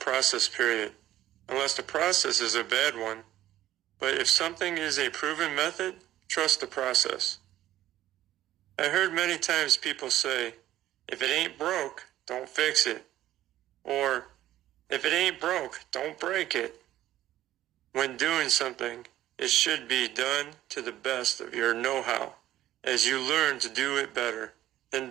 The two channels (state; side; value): quieter; left; 13.7 dB